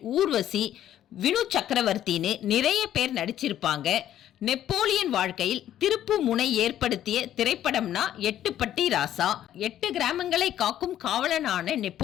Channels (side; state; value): right; quieter; 11.6 dB